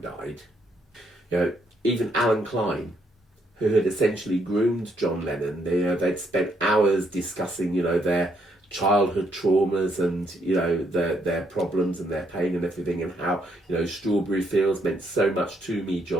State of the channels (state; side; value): normal; both; correlation 0.74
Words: died. You know, even Alan Klein, who had essentially groomed John Lennon, they'd spent hours discussing, you know, their childhood traumas and, you know, their problems and their pain and everything, and how, you know, Strawberry Fields meant so much to me,